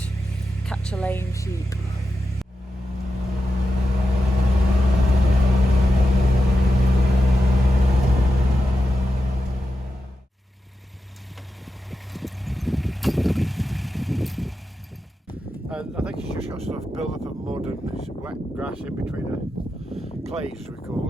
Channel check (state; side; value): normal; both; correlation 0.90